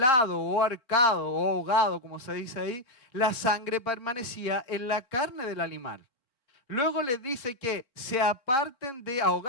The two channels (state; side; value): late; right; 3.7 ms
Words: o ahorcado o ahogado, como se dice ahí, la sangre permanecía en la carne del animal. Luego les dice que se aparten de